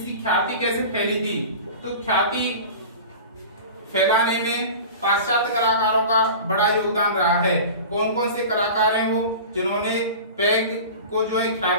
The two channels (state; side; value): inverted; both; correlation -0.35